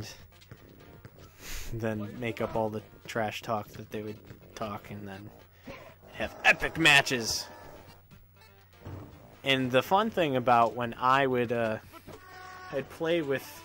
then make up all the trash talk that they would talk, and then have epic matches. And the fun thing about when I would I'd play with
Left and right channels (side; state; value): both; identical; correlation 1.00